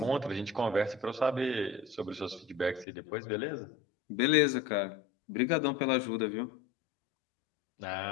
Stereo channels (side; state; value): right; drops out; at 2.9 s